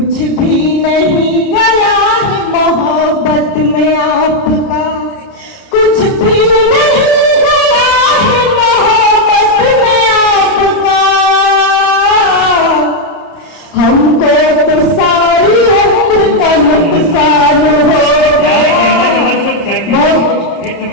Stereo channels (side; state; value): right; late; 30 ms